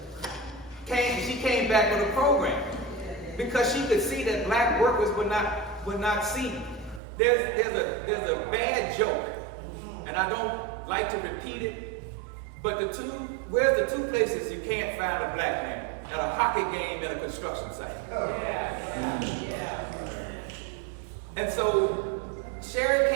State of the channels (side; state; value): left; drops out; at 7.0 s